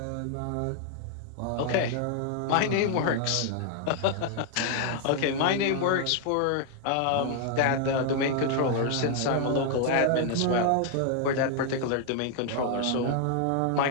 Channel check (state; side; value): different; both; correlation 0.00